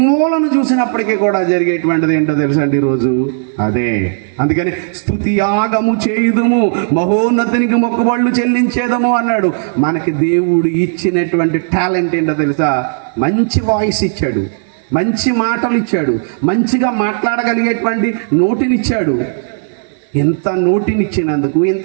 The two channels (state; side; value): silent; left; digital silence